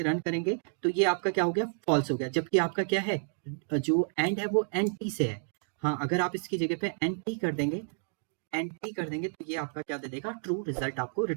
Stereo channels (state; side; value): silent; left; digital silence